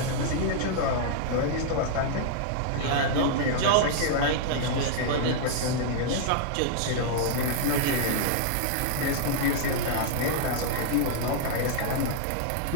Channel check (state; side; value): different; both; correlation -0.01